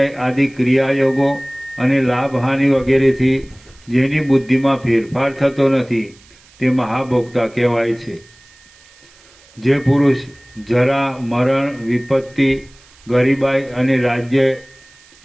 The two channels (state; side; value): noise; right; hiss, 27 dB below the sound